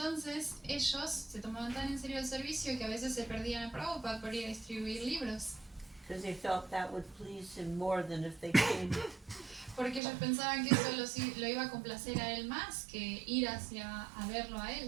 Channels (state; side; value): drops out; left; at 10.0 s